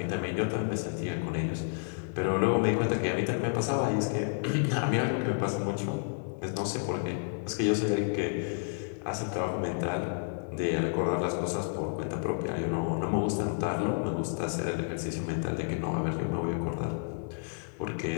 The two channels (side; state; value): right; silent; 57 dB below the other